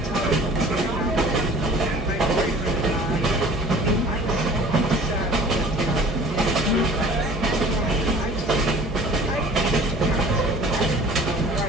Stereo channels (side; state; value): both; normal; correlation 0.47